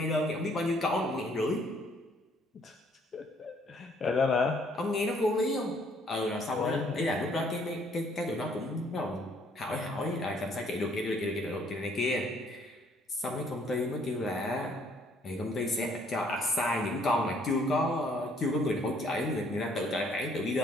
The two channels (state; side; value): normal; both; correlation 0.64